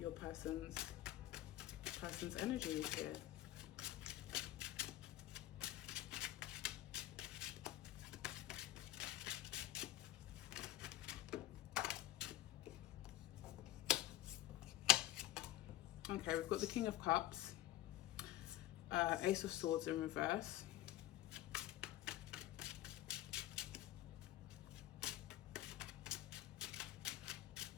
person's energies here. Okay, we've got the King of Cups, Ace of Swords in reverse,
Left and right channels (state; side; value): quieter; right; 14.9 dB